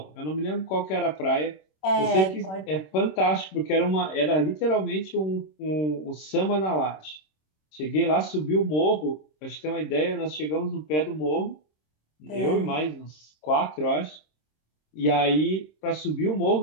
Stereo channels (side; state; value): right; late; 26 ms